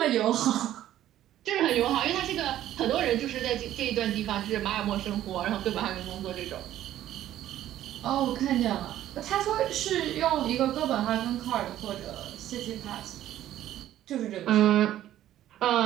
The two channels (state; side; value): quieter; left; 12.7 dB